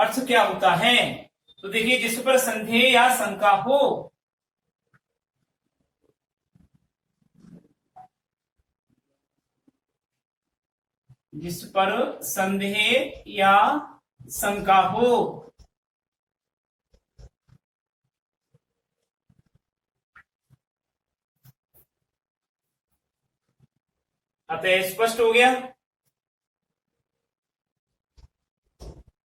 क्या होता है? तो देखिए, जिस पर संदेह या शंका हो, जिस पर संदेह या शंका हो, अतः स्पष्ट हो गया।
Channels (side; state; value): both; identical; correlation 1.00